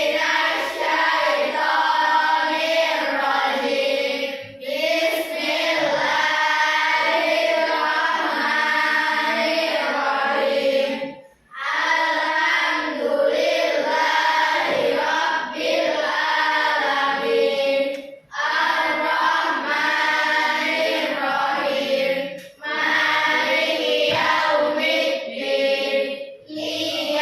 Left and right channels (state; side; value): identical; both; correlation 1.00